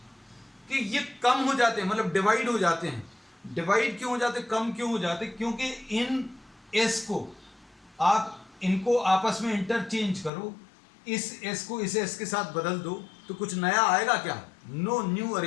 कि ये कम हो जाते हैं, मतलब डिवाइड हो जाते हैं। डिवाइड क्यों हो जाते, कम क्यों हो जाते? क्योंकि इन एस को आप इनको आपस में इंटरचेंज करो, इस एस को इस एस के साथ बदल दो तो कुछ नया आएगा क्या? No new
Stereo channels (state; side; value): drops out; right; at 10.3 s